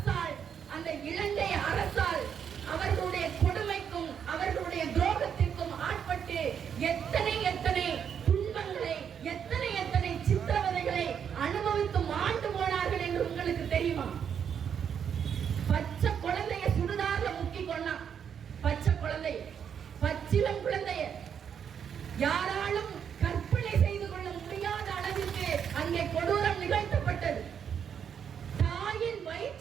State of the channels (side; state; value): left; quieter; 7.9 dB